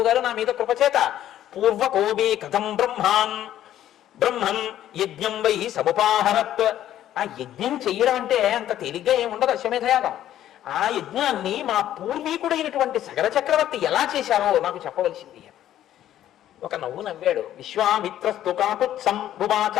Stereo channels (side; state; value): right; quieter; 12.0 dB